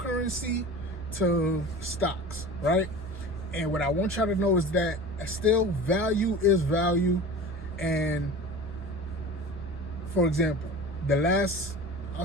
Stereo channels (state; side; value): normal; both; correlation 0.35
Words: to stocks, right? And what I want y'all to know is that still value is value. And for example, the last,